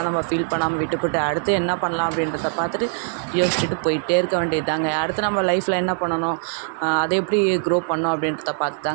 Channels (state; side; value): silent; left; digital silence